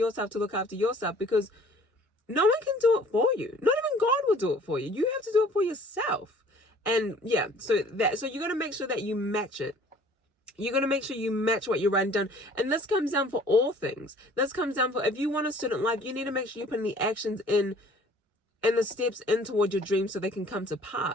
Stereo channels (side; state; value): both; normal; correlation 0.53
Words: to look after yourself, because no one can do it for you. Not even God will do it for you. You have to do it for yourself. And yeah, so you're gonna make sure that you match it. You're going to make sure you match what you're writing down. And this comes down for all things. This comes down for, if you want a student life, you need to make sure you put the actions in and the steps in toward your dreams so they can come to